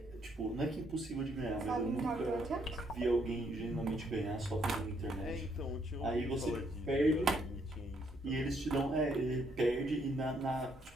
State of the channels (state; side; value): normal; both; correlation 0.72